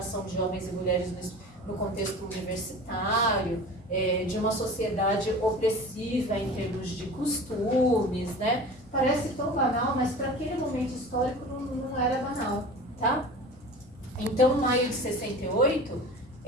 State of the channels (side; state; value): both; normal; correlation 0.37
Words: de homens e mulheres no contexto universitário, de uma sociedade opressiva em termos de costumes, né? Parece tão banal, mas para aquele momento histórico não era banal, tá? Então, maio de 68